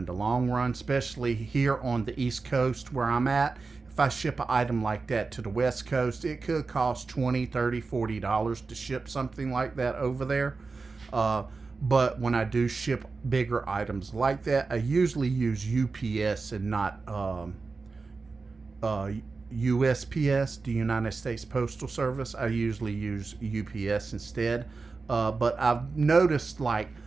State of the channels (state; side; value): quieter; left; 4.2 dB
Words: the long run, especially here on the East Coast where I'm at. If I ship an item like that to the West Coast, it could cost $20, $30, $40 to ship something like that over there. But when I do ship bigger items like that, I usually use UPS and not USPS, the United States Postal Service. I usually use UPS instead. But I've noticed like